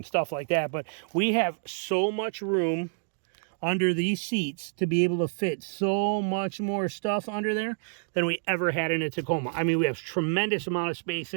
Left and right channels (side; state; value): left; silent; digital silence